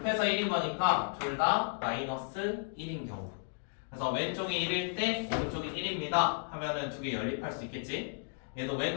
1인 거니까 둘 다 마이너스 1인 경우. 그래서 왼쪽이 1일 때 오른쪽이 1입니다 하면은 두 개 연립할 수 있겠지. 얘도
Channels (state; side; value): silent; right; digital silence